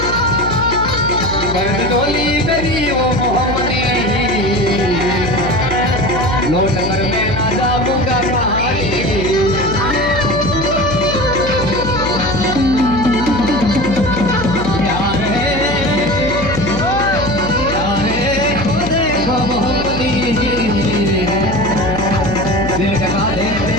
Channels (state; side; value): noise; left; hum, 7 dB below the sound